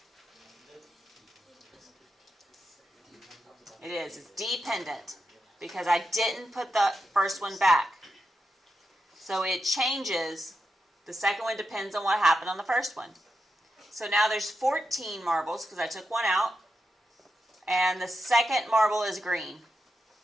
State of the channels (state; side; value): normal; both; correlation 0.87